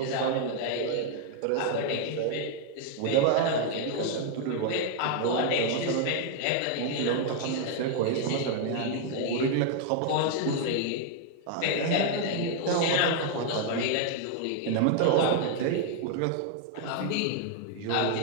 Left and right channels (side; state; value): both; different; correlation 0.00